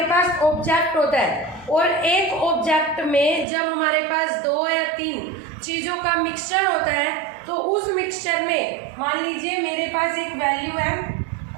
पास ऑब्जेक्ट होता है और एक ऑब्जेक्ट में जब हमारे पास 2 या 3 चीज़ों का मिक्सचर होता है तो उस मिक्सचर में मान लीजिए मेरे पास एक वैल्यू है,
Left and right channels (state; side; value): drops out; left; at 3.5 s